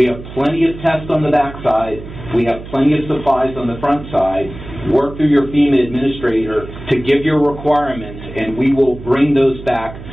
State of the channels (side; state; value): right; noise; hum, 13 dB below the sound